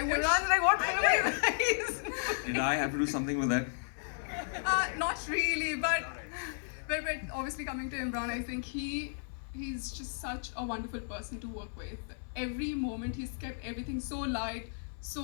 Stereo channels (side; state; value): right; silent; 55 dB below the other